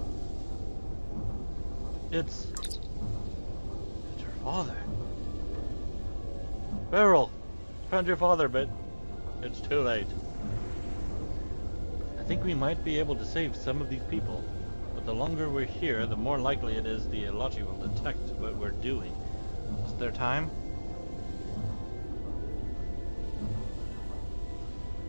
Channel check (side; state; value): both; inverted; correlation -1.00